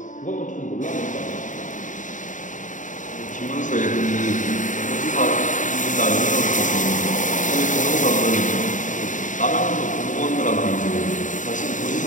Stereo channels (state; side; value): late; right; 0.37 ms